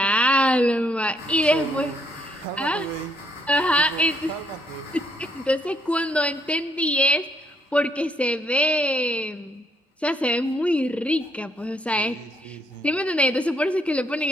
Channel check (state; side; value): normal; both; correlation 0.71